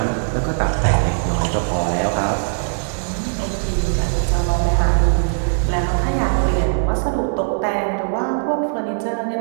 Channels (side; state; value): left; silent; digital silence